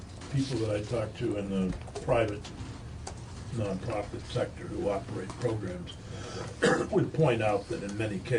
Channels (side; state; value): both; identical; correlation 1.00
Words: people that I talk to in the private nonprofit sector who operate programs would point out that in many